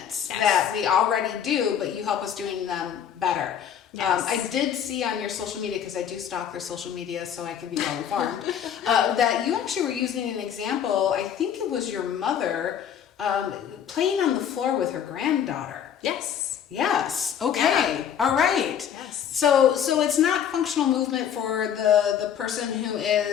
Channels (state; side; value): quieter; right; 8.9 dB